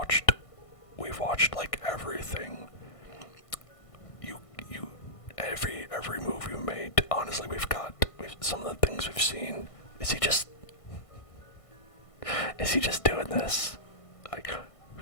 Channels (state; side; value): late; right; 1.5 ms